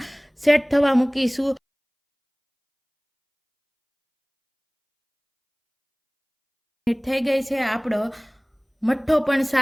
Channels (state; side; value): identical; both; correlation 1.00